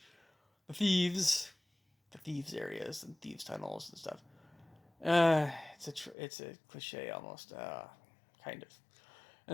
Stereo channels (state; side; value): drops out; right; at 6.2 s